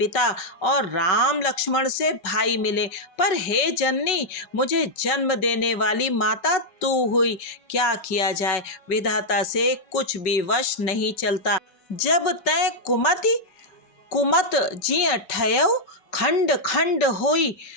और राम लक्ष्मण से भाई मिले, पर हे जननी, मुझे जन्म देने वाली माता तू हुई। क्या किया जाए, विधाता से कुछ भी वश नहीं चलता। जब तै कुमत जिय ठयउ, खंड खंड होई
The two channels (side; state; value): right; late; 5.3 ms